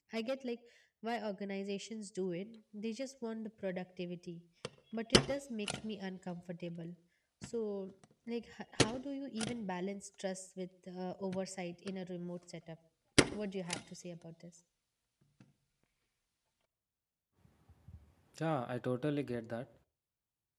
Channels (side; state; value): both; identical; correlation 1.00